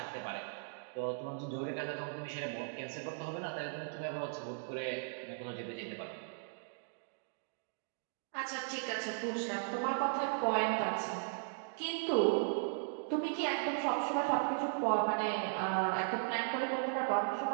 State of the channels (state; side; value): silent; left; digital silence